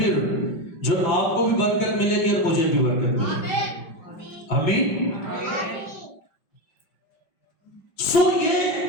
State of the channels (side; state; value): right; late; 5.5 ms